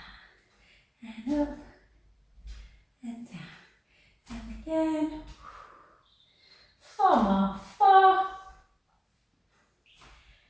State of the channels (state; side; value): identical; both; correlation 1.00